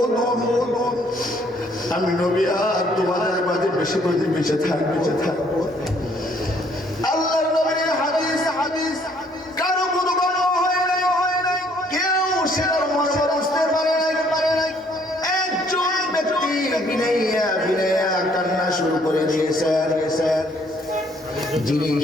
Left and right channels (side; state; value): both; normal; correlation 0.64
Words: আমি নবী আর তোমাদের মাঝে বেশি বেঁচে থাকবো। আল্লাহর নবীর হাদিস কারো কোনো গল্প হয় নাই, কেউ সেটার মর্ম বুঝতে পারে নাই। একজন ব্যক্তি বিনাইয়া কান্না শুরু করে দিয়েছেন, যিনি